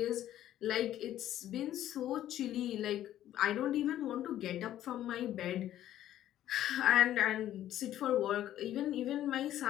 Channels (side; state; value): right; quieter; 12.4 dB